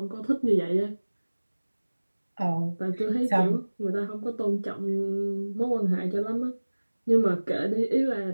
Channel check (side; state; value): both; inverted; correlation -1.00